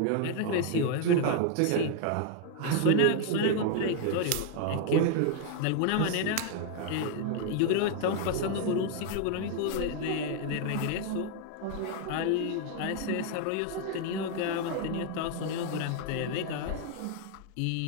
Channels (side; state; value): both; different; correlation 0.00